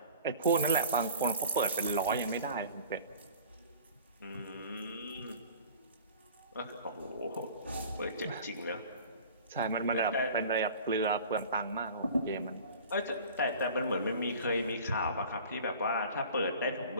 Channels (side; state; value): both; inverted; correlation -0.43